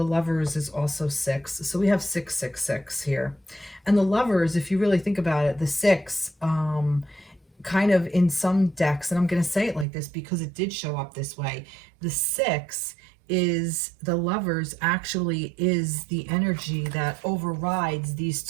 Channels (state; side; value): drops out; left; at 9.9 s